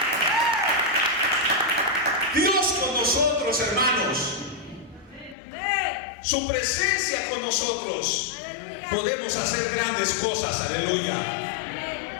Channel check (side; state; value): right; drops out; at 5.4 s